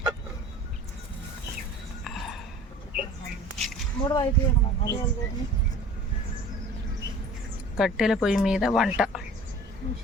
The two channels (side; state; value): both; normal; correlation 0.44